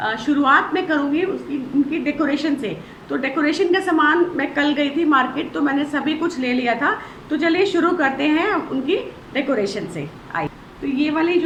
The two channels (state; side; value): identical; both; correlation 1.00